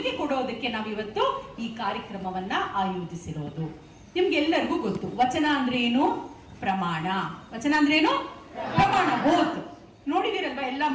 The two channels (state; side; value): identical; both; correlation 1.00